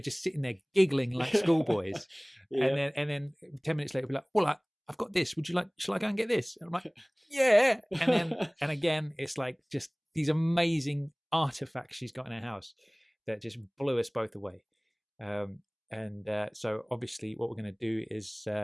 just sitting there giggling like schoolboys. Yeah. And then 10 minutes later, we'd be like, well, I've got this. Shall I go and get this? And I'm like, yeah. And again, it's like just these amazing artifacts she's got in her house that just blew us both away. So obviously what we're going to do is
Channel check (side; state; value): both; identical; correlation 1.00